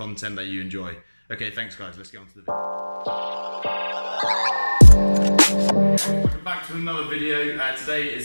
that you enjoy. Okay, thanks guys, let's get on to the video. Welcome back to another video. Today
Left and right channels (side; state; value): both; inverted; correlation -1.00